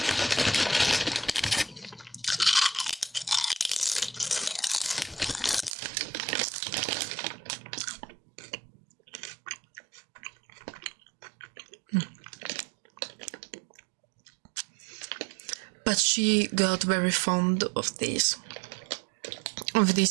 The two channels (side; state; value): left; drops out; at 5.8 s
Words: But she got very fond of this